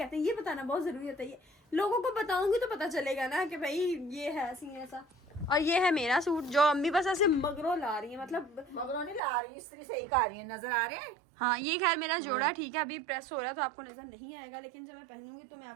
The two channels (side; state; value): left; drops out; at 9.2 s